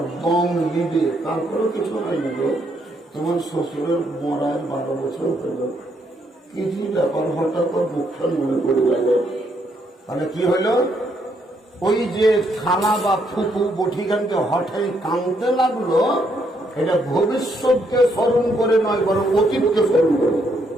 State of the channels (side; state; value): both; normal; correlation 0.74